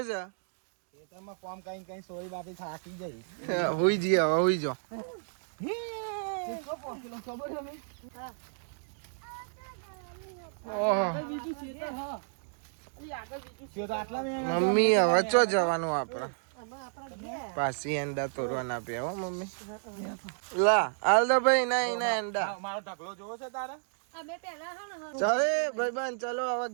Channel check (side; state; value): left; silent; digital silence